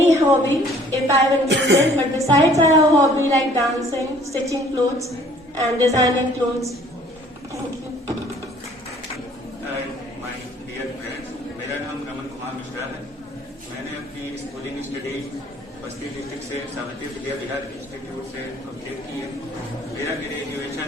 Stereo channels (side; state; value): both; normal; correlation 0.56